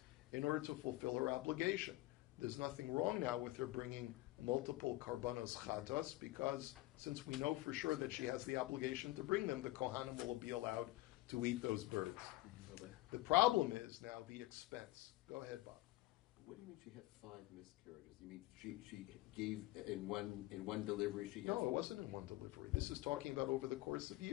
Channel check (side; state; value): right; quieter; 18.5 dB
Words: in order to fulfill her obligation. There's nothing wrong now with her bringing multiple karbanos chatas, because since we know for sure that she has the obligation to bring them, the kohanim will be allowed to eat those birds. The problem is now the expense. Go ahead, Bob. What do you mean she had 5 miscarriages? You mean she gave in one delivery? No, it wasn't in one delivery. This is talking about over the course of